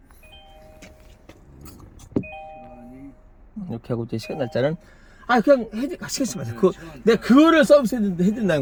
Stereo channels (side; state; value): both; identical; correlation 1.00